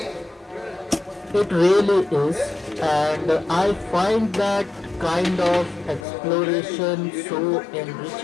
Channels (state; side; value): drops out; right; at 6.1 s